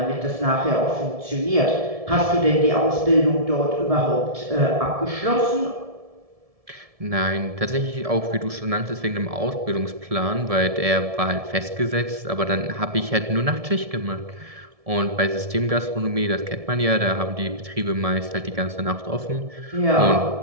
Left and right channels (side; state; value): left; late; 1.7 ms